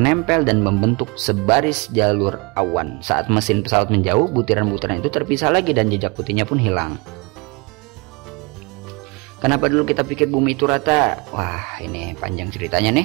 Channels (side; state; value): left; quieter; 28.0 dB